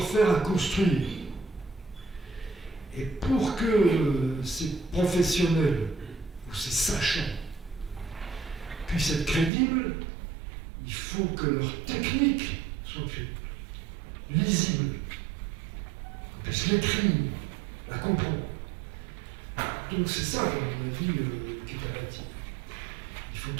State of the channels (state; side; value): drops out; left; at 9.5 s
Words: à construire. Et pour que ces professionnels ou ces sachants puissent être crédibles, il faut que leur technique soit lisible, qu'on puisse l'écrire, la comprendre. Donc c'est ça, à mon avis, qui est à bâtir. Il faut